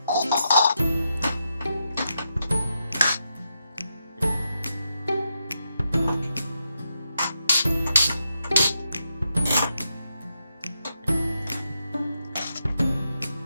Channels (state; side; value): inverted; both; correlation -0.84